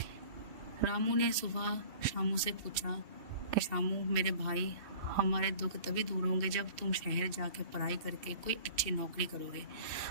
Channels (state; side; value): late; left; 2.8 ms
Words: रामू ने सुबह शामू से पूछा कि शामू मेरे भाई, हमारे दुख तभी दूर होंगे जब तुम शहर जाके पढ़ाई करके कोई अच्छी नौकरी करोगे।